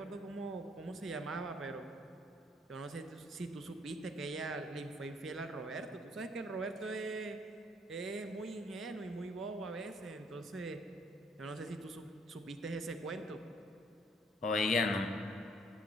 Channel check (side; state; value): both; normal; correlation 0.65